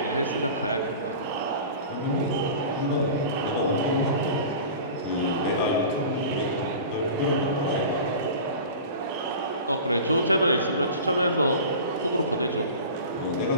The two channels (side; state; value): both; inverted; correlation -0.36